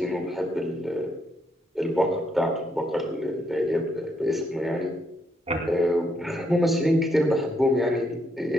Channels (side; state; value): both; normal; correlation 0.75